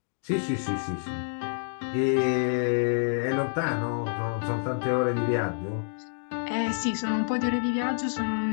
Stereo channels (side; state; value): right; silent; digital silence